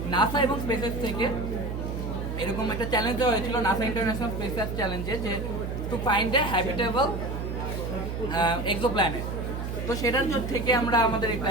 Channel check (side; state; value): right; noise; hum, 4 dB below the sound